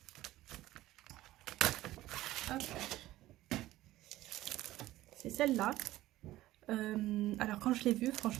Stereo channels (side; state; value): left; quieter; 15.8 dB